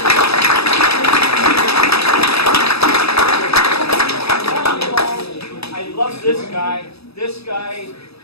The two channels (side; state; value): right; late; 0.78 ms